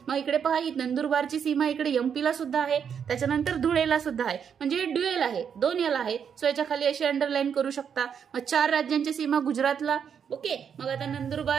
मग इकडे पहा, नंदुरबारची सीमा इकडे एमपीला सुद्धा आहे, त्याच्यानंतर धुळेला सुद्धा आहे. म्हणजे ड्युएल आहे, 2 याला आहे. सो याच्या खाली अशी अंडरलाईन करू शकता. मग 4 राज्यांची सीमा गुजरातला. ओके, मग आता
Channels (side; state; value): left; quieter; 7.5 dB